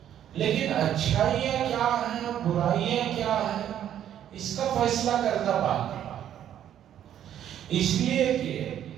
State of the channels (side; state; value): left; quieter; 10.5 dB